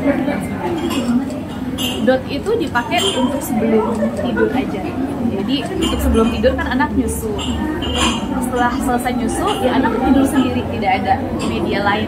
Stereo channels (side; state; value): both; identical; correlation 1.00